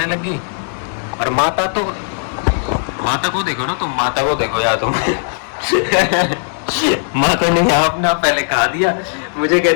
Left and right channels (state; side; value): silent; right; digital silence